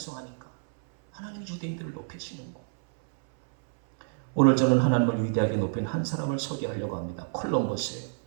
하나님이 유대인들을 높이시는 거. 오늘 저는 하나님을 위대하게 높인 한 사람을 소개하려고 합니다. 콜럼버스예요.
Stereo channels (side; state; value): left; silent; 59 dB below the other